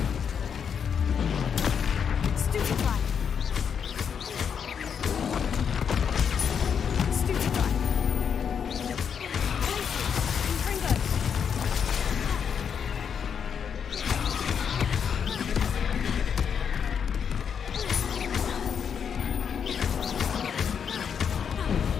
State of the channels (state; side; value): quieter; right; 7.3 dB